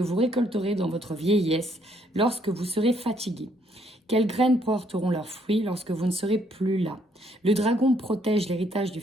vous récolterez dans votre vieillesse lorsque vous serez fatigué? Quelles graines porteront leurs fruits lorsque vous ne serez plus là? Le dragon protège l'héritage du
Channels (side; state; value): both; normal; correlation 0.69